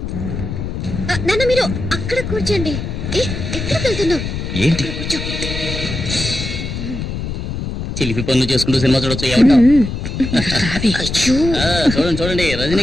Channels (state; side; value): noise; left; rumble, 5 dB below the sound